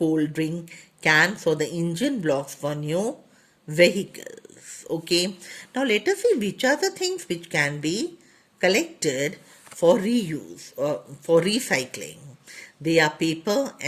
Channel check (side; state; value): both; identical; correlation 1.00